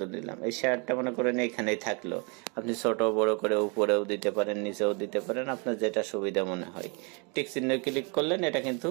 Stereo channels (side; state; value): left; quieter; 33.4 dB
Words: দিলাম। এই শেয়ারটা মনে করেন এখানেই থাকলো। আপনি ছোট বড় করে উপরেও দিতে পারেন, নিচেও দিতে পারেন, আপনার যেটা সুবিধা মনে হয়। টিক চিহ্ন ক্লিক করলেন, এটা কিন্তু